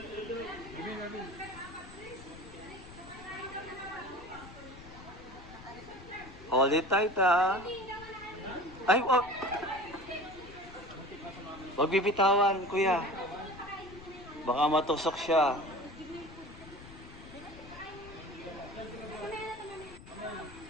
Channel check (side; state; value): left; noise; rumble, 17 dB below the sound